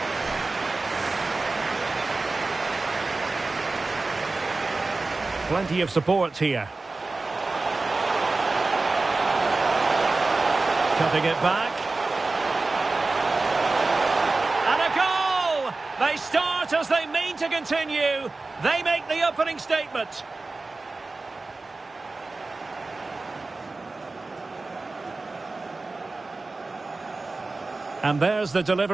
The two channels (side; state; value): left; quieter; 3.5 dB